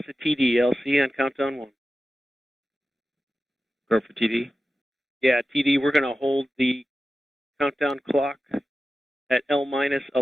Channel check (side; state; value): both; normal; correlation 0.93